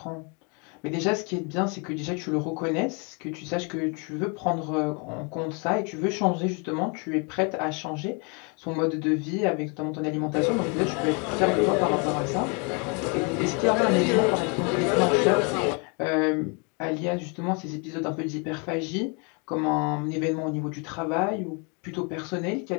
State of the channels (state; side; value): quieter; right; 34.2 dB